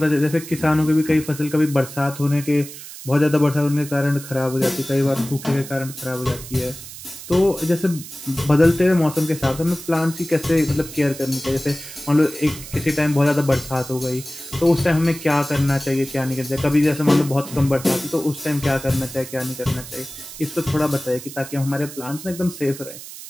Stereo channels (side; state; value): right; noise; hiss, 13 dB below the sound